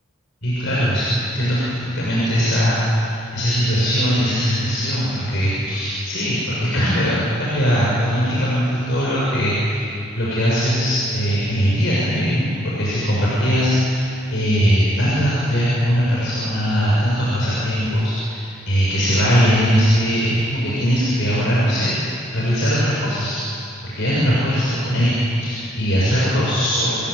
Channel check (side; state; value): both; normal; correlation 0.70